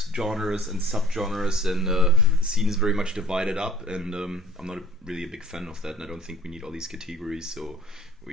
genres and subgenres, and the scene is very much divided up. And I'm not really a big fan of that, and I don't think we need all these categories. So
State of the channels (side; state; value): both; normal; correlation 0.48